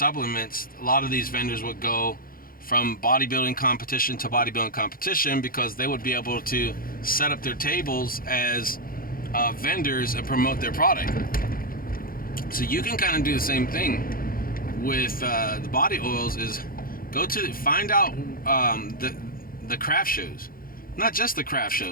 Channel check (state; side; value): late; right; 0.42 ms